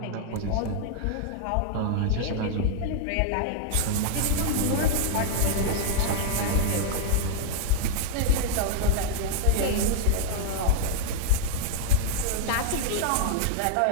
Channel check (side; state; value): both; different; correlation 0.00